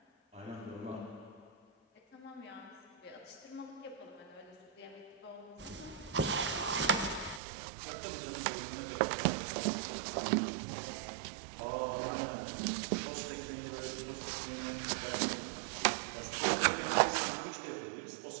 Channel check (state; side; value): drops out; left; at 7.4 s